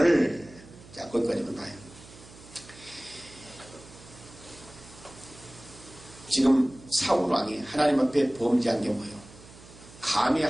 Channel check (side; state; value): right; noise; hum, 20 dB below the sound